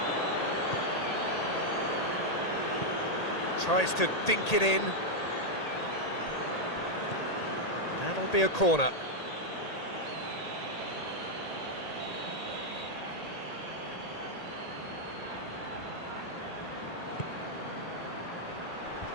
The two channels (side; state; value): right; late; 1.8 ms